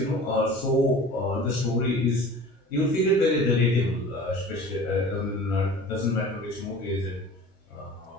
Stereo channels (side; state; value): both; normal; correlation 0.42